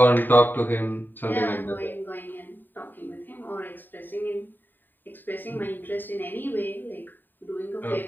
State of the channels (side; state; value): right; late; 0.091 ms